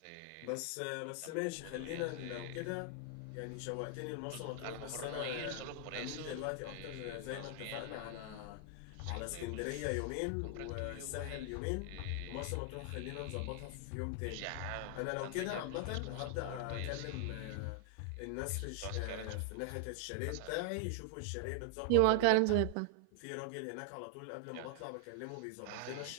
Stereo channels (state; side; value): different; both; correlation -0.01